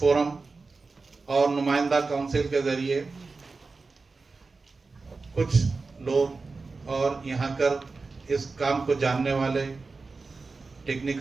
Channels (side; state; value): left; quieter; 4.1 dB